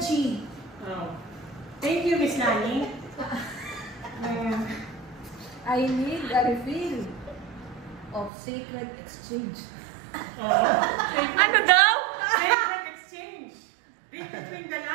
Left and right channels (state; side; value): drops out; left; at 8.3 s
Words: Oh. Thank you, Miss Lani. I need a refill of sacred exchange. Ano daw? Sacred exchange. Read between the